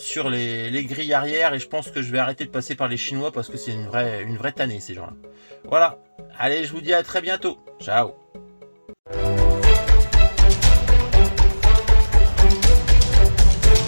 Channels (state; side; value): inverted; both; correlation -1.00